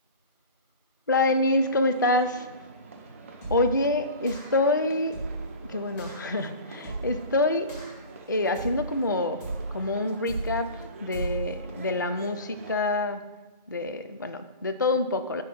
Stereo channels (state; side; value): inverted; both; correlation -0.35